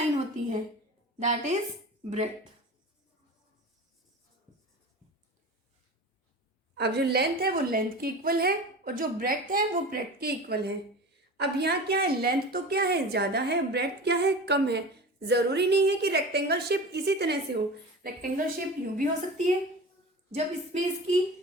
होती है दैट इज ब्रेड्थ। अब जो लेंथ है वो लेंथ के इक्वल है और जो ब्रेड्थ है वो ब्रेड्थ के इक्वल है। अब यहाँ क्या है, लेंथ तो क्या है ज्यादा है, ब्रेड्थ क्या है कम है। जरूरी नहीं है कि रेक्टेंगल शेप इसी तरह से हो, रेक्टेंगल शेप यूं भी हो सकती है जब इसमें इसकी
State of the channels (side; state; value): both; normal; correlation 0.33